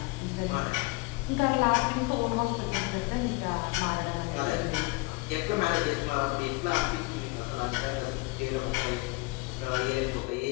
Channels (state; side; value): quieter; right; 25.8 dB